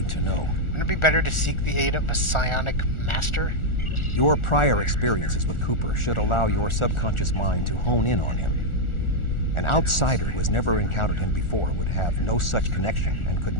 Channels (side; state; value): right; late; 1.4 ms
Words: to know? Wouldn't it be better to seek the aid of a psionic master? Your prior experiences with Cooper should allow your subconscious mind to hone in on him. An outsider who has never encountered him before would have no such connection and could